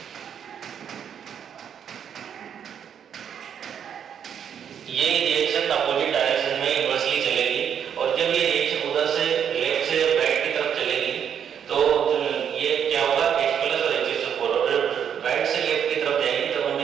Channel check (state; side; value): quieter; left; 8.3 dB